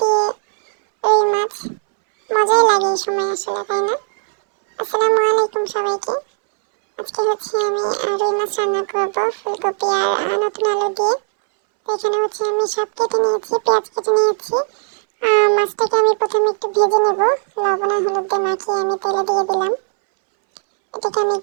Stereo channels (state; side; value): silent; left; 68 dB below the other